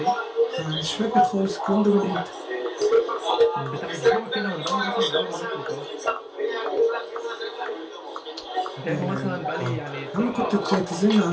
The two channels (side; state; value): both; identical; correlation 1.00